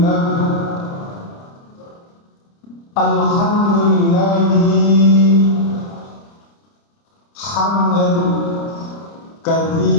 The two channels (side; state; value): right; late; 30 ms